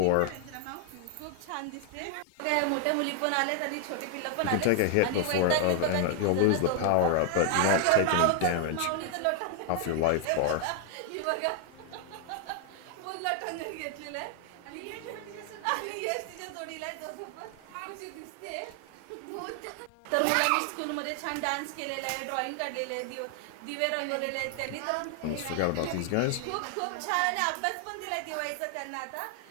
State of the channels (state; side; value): different; both; correlation 0.00